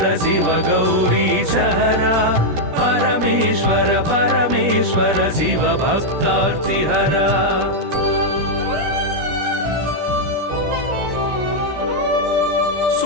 शिव गौरी सहरा परमेश्वर परमेश्वर शिव भक्तार्तिहरा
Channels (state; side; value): late; left; 17 ms